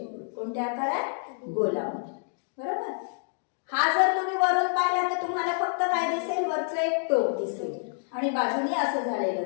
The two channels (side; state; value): right; silent; digital silence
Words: कोणत्या आकारात, गोलामध्ये. बरोबर. हा जर तुम्ही वरून पाहिला तर तुम्हाला फक्त काय दिसेल, वरचं एक टोक दिसेल आणि बाजूनी असं झालेलं